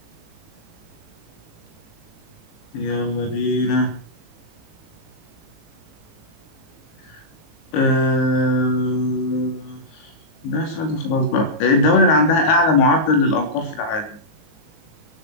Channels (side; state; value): right; late; 18 ms